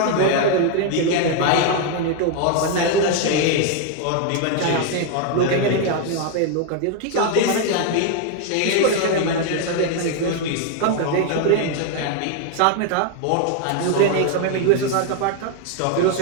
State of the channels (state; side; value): different; both; correlation 0.01